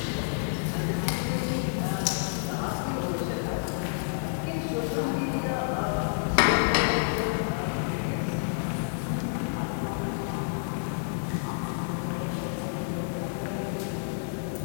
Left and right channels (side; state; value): right; silent; digital silence